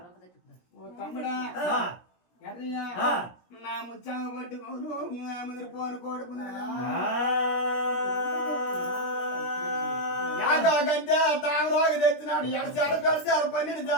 ఓ తమ్ముడా ఎర్రయ్యా నా ముచ్చామ పట్టుకోను ముదిరిపోను కోడుకున్నా గంటే తామరాకు తెచ్చినాడు 7 చాల పెడతారు 12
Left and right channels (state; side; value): late; right; 17 ms